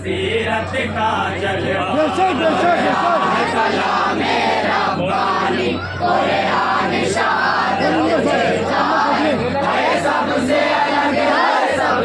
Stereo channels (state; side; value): identical; both; correlation 1.00